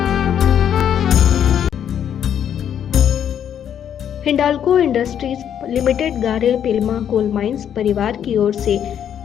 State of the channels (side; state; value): right; quieter; 9.2 dB